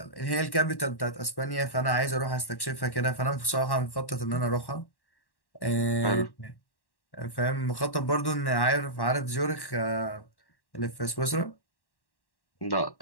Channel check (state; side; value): late; right; 1.1 ms